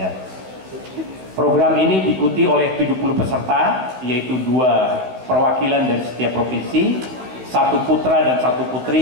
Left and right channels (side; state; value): left; late; 16 ms